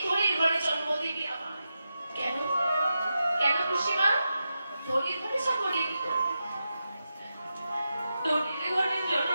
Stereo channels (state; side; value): inverted; both; correlation -0.89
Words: ধরে ঘরে জন্ম দিবি আমার কেন কেন খুশিমা ধরে ধরে সকলে কি করবে ধরে ঘরে জন্ম